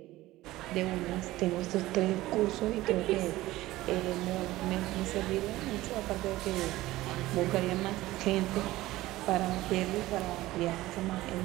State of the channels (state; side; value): quieter; left; 17.2 dB